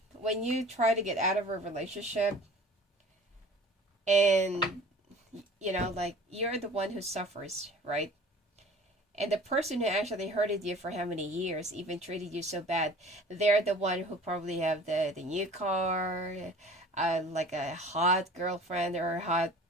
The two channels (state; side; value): normal; both; correlation 0.45